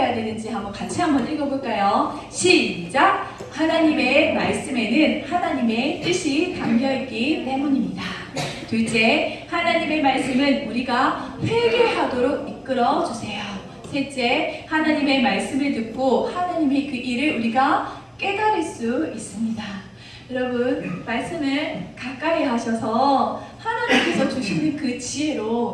되는지 같이 한번 읽어볼까요? 시작! 하나님의 말씀에는 하나님의 뜻이 담겨있기 때문입니다. 둘째, 하나님의 말씀은 우리가 회개하도록 이끌어주세요. 셋째, 하나님의 말씀을 듣고 하나님의 그 일을 우리가 깨달을 수 있습니다. 여러분 말씀을 가까이 하셔서 하나님께서 주시는 그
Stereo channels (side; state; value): both; identical; correlation 1.00